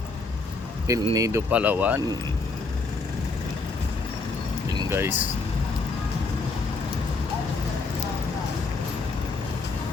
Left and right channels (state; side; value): quieter; right; 3.8 dB